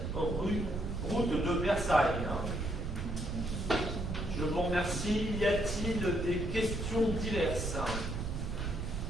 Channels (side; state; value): right; noise; rumble, 4 dB below the sound